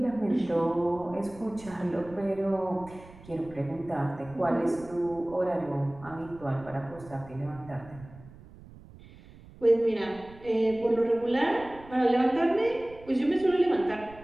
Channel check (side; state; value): right; noise; rumble, 20 dB below the sound